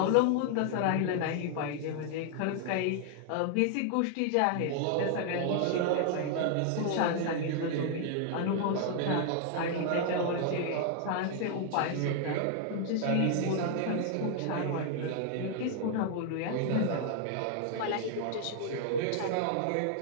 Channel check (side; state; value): both; different; correlation 0.00